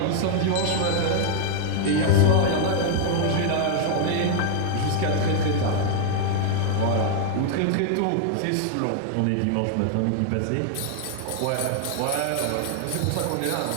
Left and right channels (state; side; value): different; both; correlation 0.00